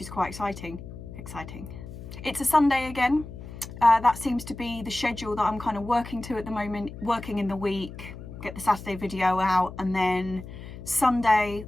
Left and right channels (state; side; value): noise; left; hum, 12 dB below the sound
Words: quite exciting. It's a Sunday again. That seems to be the schedule that I'm kind of working to at the moment, working in the week, get the Saturday video out, and then Sunday